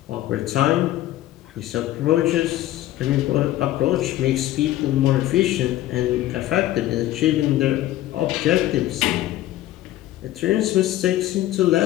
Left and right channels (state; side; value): quieter; right; 14.5 dB